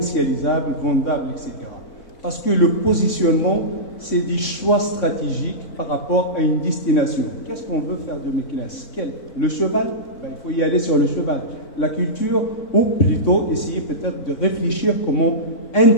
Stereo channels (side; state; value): right; late; 3.6 ms